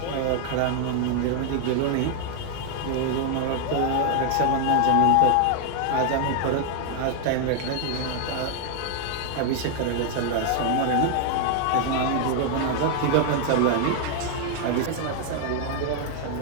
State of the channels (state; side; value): different; both; correlation 0.00